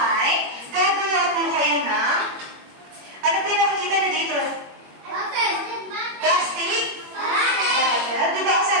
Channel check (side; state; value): left; late; 21 ms